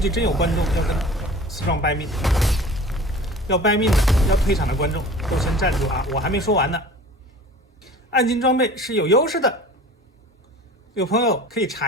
真有觀眾要跟思壯掰命。要掰命的，要退場的觀眾都先站住啊！我還沒說完呢。暗金裝備是有優勢的，有朋友可以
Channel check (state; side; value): normal; both; correlation 0.42